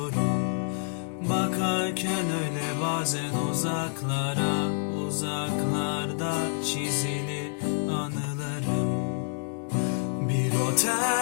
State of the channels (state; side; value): silent; right; digital silence